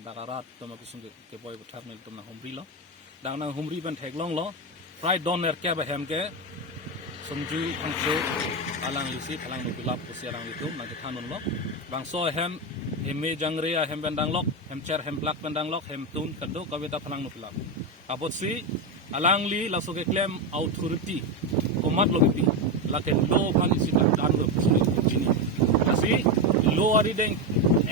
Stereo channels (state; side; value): normal; both; correlation 0.12